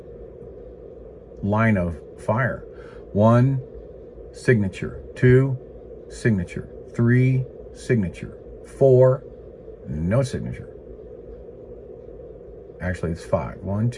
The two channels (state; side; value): identical; both; correlation 1.00